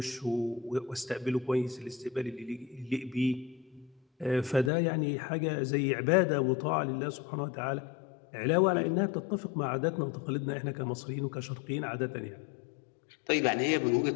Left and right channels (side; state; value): right; drops out; at 4.7 s